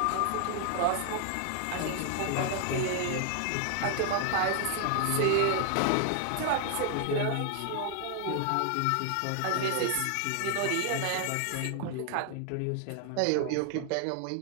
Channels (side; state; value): both; different; correlation 0.00